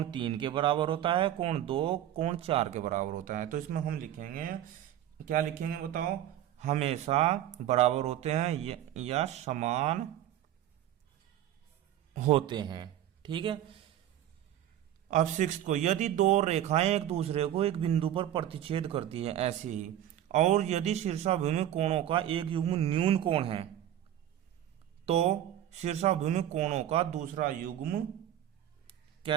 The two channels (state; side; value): quieter; left; 11.8 dB